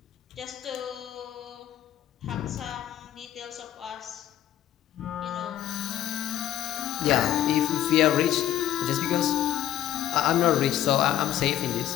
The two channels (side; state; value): right; quieter; 11.8 dB